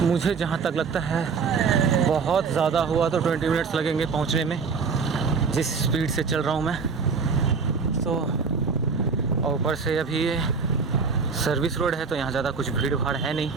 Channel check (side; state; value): left; quieter; 5.2 dB